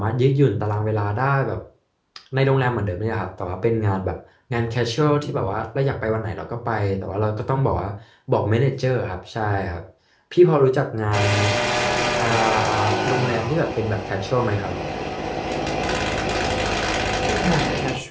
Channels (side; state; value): both; identical; correlation 1.00